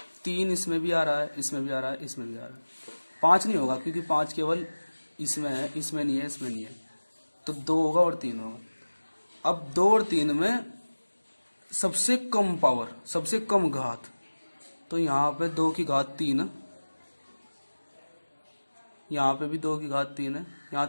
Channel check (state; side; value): inverted; both; correlation -1.00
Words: इसमें भी आ रहा है, इसमें भी आ रहा है, इसमें भी आ रहा है। 5 नहीं होगा क्योंकि 5 केवल इसमें है, इसमें नहीं है, इसमें नहीं है, तो 2 होगा और 3 होगा। अब 2 और 3 में सबसे कम पावर, सबसे कम घात, तो यहाँ पे 2 की घात 3 है, यहाँ पे भी 2 की घात 3 है,